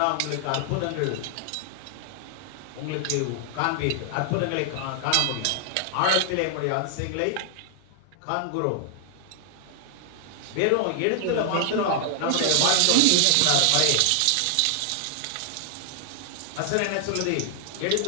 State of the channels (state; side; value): different; both; correlation 0.00